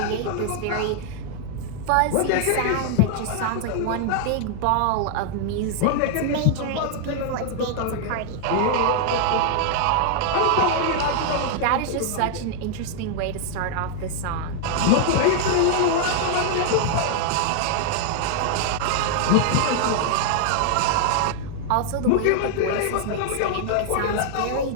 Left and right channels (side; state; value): both; different; correlation 0.00